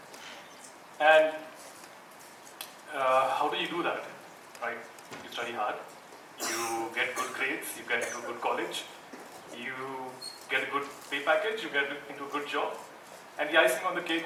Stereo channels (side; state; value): both; identical; correlation 1.00